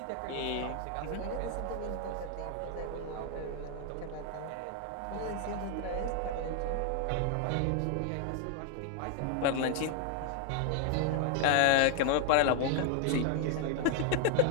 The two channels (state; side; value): different; both; correlation 0.00